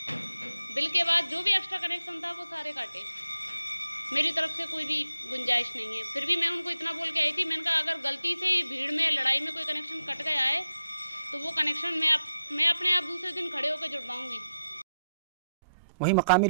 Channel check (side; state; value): both; inverted; correlation -0.85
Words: बिल के बाद जो भी एक्स्ट्रा कनेक्शन था वो सारे काटे। मेरी तरफ से कोई भी गुंजाइश नहीं है। फिर भी मैं उनको इतना बोल के आई थी, मैंने कहा अगर गलती से ही भीड़ में लड़ाई में कोई कनेक्शन कट गया है तो वो कनेक्शन मैं अपने आप दूसरे दिन खड़े होकर जुड़वाऊंगी। वहीं मकामी